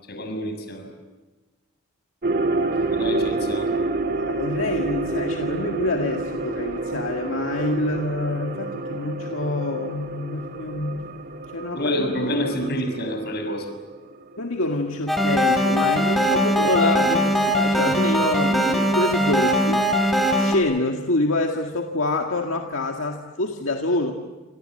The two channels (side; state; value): both; normal; correlation 0.32